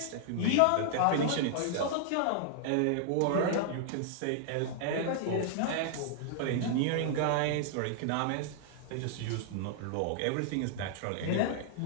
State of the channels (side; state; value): both; different; correlation -0.01